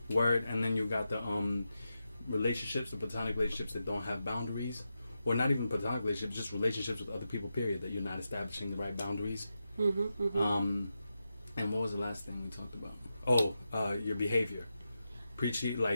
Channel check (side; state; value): both; inverted; correlation -0.89